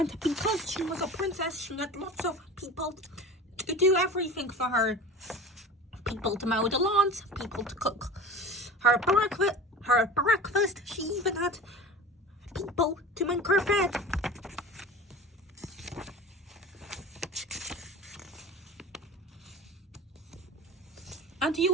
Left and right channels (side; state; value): both; normal; correlation 0.35